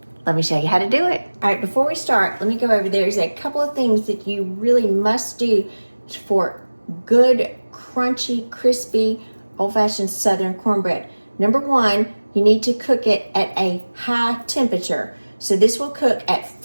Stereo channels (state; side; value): inverted; both; correlation -1.00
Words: let me show you how to do it. All right, before we start, let me go over. There's a couple of things that you really must do for good, crunchy, crispy, old-fashioned Southern cornbread. Number one, you need to cook it at a high temperature. So this will cook at